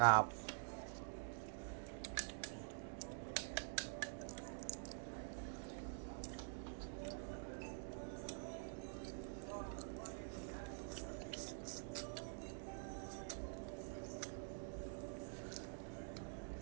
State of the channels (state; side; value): silent; left; digital silence